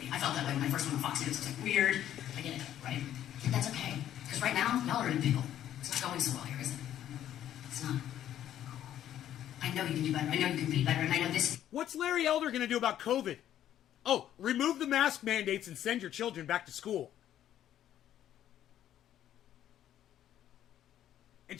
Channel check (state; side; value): quieter; right; 11.4 dB